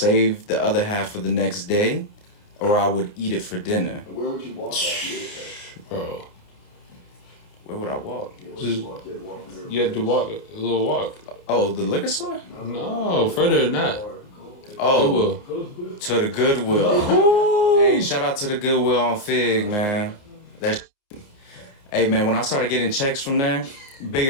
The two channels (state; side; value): late; right; 29 ms